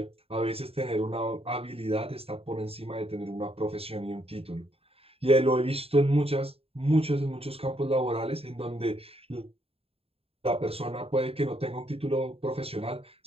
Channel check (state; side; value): late; left; 0.28 ms